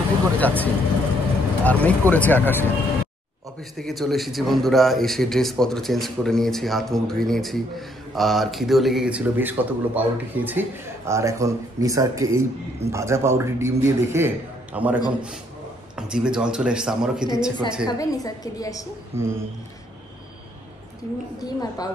করে যাচ্ছি। আর মেঘ করেছে আকাশে। অফিস থেকে চলে এসেছি বন্ধুরা, এসে ড্রেসপত্র চেঞ্জ করে নিয়েছি, হাত মুখ ধুয়ে নিয়েছি, আর খিদেও লেগে গেছিলো, বেশ কতগুলো পাউরুটি খেয়েছি। আর এখন নিসারকে এই ভাজা পাউরুটি ডিম দিয়ে দেখে আমার এখন জিভে জল চলে এসছে, আমারও খেতে ইচ্ছে করছে। নিসারকে দিয়ে আসি ডিম আর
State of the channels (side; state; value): both; normal; correlation 0.69